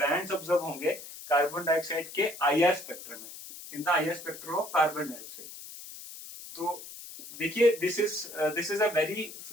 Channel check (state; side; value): noise; left; hiss, 13 dB below the sound